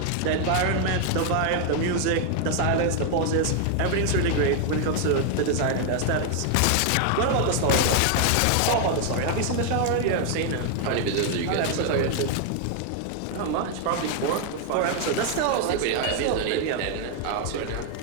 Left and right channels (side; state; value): both; different; correlation 0.00